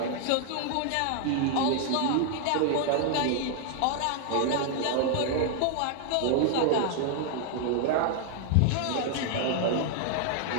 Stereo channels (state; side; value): different; both; correlation 0.00